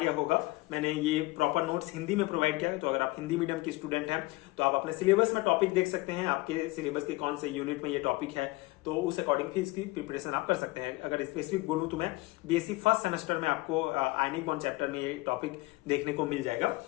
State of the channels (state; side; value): quieter; right; 21.4 dB